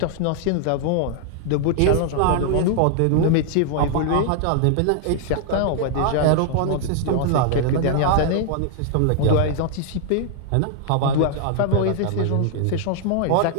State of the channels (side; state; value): both; different; correlation 0.00